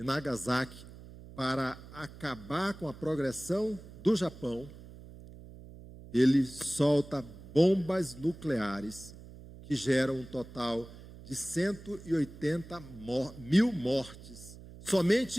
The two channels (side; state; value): right; noise; hum, 17 dB below the sound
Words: Nagasaki, para acabar com a progressão do Japão, ele solta bombas nucleares que geram um total de 180 mil mortes,